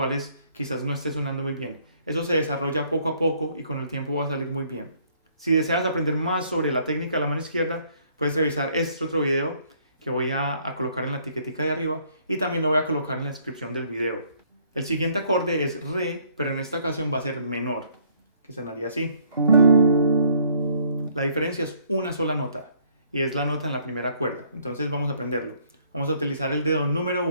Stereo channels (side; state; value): both; inverted; correlation -0.64